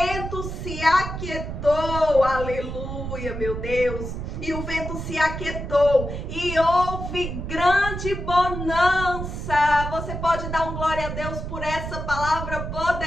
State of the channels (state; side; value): noise; right; rumble, 6 dB below the sound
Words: se aquietou, aleluia, meu Deus. E o vento se aquietou e houve grande bonança. Você pode dar um glória a Deus por essa palavra